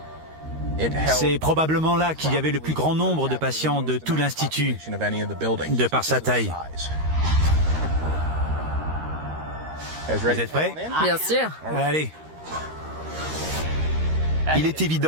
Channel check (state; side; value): late; left; 13 ms